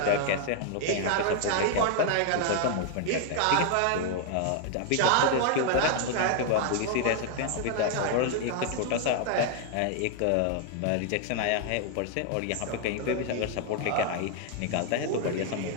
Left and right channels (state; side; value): different; both; correlation 0.00